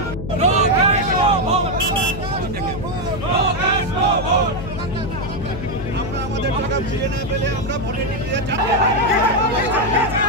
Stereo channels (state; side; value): noise; left; hum, 7 dB below the sound